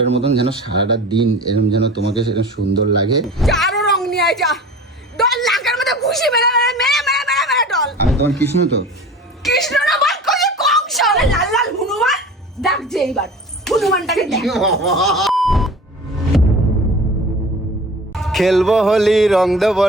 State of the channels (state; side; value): normal; both; correlation 0.39